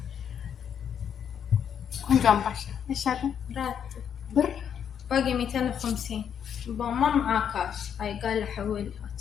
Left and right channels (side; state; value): right; quieter; 8.3 dB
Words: عم باشا ايش هذا؟ راتب بر باقي 250. ما معاه كاش. هاي قال حولها.